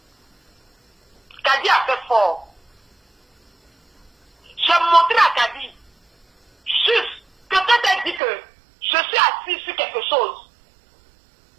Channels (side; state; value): left; drops out; at 8.2 s